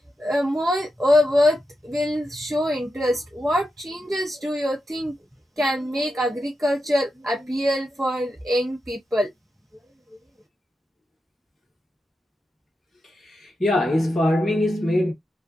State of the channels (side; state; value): both; normal; correlation 0.88